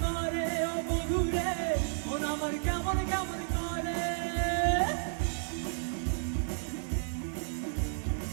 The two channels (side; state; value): left; silent; 56 dB below the other